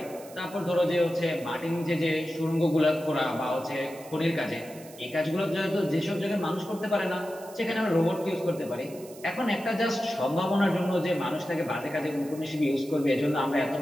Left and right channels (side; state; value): right; noise; hiss, 20 dB below the sound